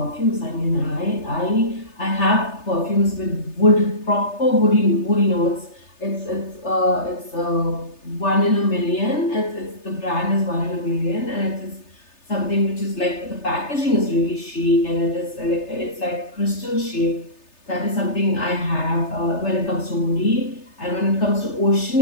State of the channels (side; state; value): right; late; 3.3 ms